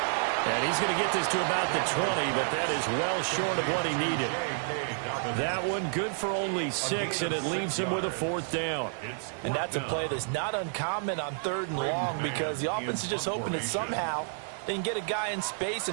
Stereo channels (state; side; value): silent; left; 58 dB below the other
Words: And he's going to get this to about the 20, but that is well short of what he needed. That one good for only 6, and it leaves him with a fourth down. And that's a play that's not uncommon on third and long because the offense is just hoping that somehow they can get a guy in space